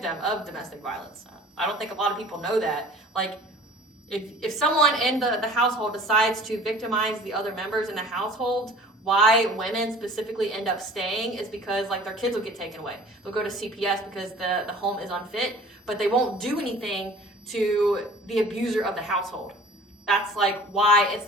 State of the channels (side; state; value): both; normal; correlation 0.47